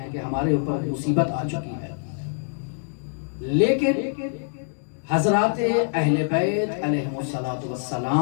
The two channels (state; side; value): silent; right; digital silence